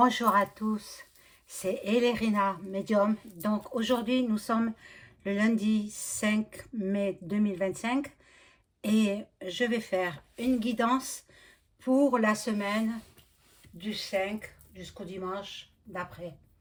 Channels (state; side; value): identical; both; correlation 1.00